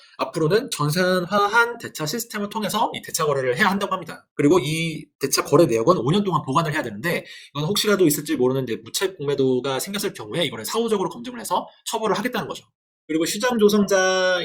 앞으로는 전산화한 대차 시스템을 통해서 이 대차 거래를 해야 한다고 합니다. 그리고 이 대차 거래 내역은 5년 동안 보관을 해야 되는데, 이건 혹시라도 있을지 모르는 이제 무차익 공매도가 생겼을 경우에 이거를 사후적으로 검증을 해서 처벌을 하겠다는 거죠. 그리고 시장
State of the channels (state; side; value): identical; both; correlation 1.00